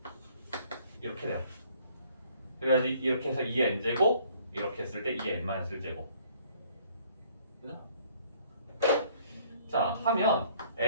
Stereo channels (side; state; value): both; inverted; correlation -0.60